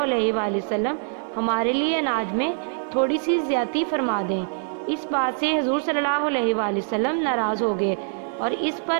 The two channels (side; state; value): left; silent; 63 dB below the other